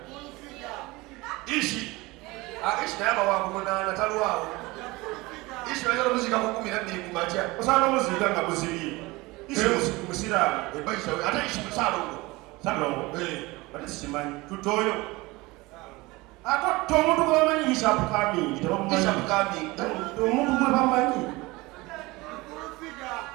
ishi naye abawangu munaana talwawo ishi bayagala omuzika ku 12 ku makya osanga omuzika nga guzibye musiraamu ebayisawe ate ishi musalongo salongo ate sikimanyi tutoyo ate omuntu gwe bamanyi Bishop Qkamber tebamumanyi omuntu gwe bamanyi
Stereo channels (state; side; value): quieter; left; 22.1 dB